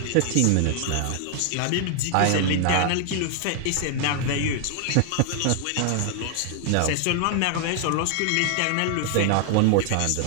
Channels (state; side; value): different; both; correlation 0.00